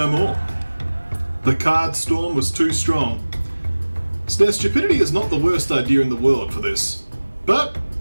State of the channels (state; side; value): inverted; both; correlation -1.00